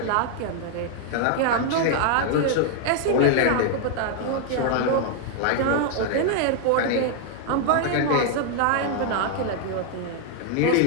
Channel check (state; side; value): different; both; correlation 0.00